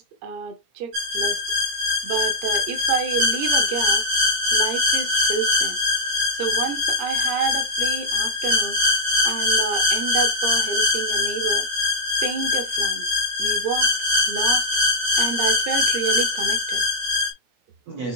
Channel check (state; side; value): late; left; 16 ms